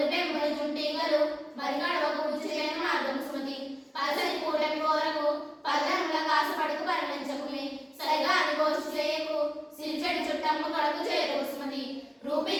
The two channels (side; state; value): both; identical; correlation 1.00